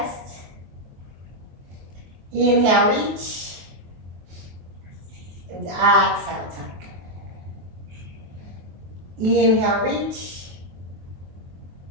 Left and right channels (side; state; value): left; late; 23 ms